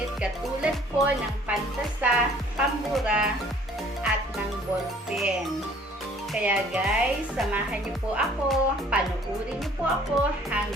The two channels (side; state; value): both; normal; correlation 0.56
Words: katulad po ng pantasa, pambura, at ng ballpen. Kaya guys, samahan niyo po ako, panuorin niyo po ako